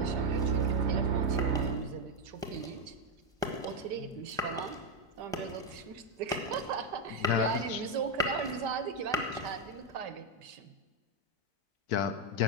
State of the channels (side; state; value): both; normal; correlation 0.03